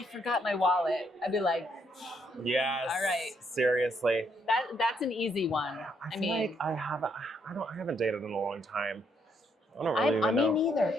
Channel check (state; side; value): normal; both; correlation 0.73